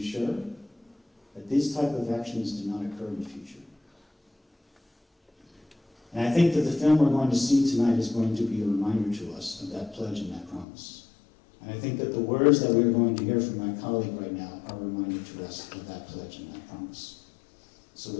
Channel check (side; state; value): right; drops out; at 10.7 s